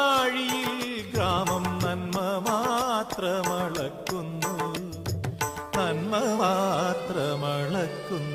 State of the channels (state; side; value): identical; both; correlation 1.00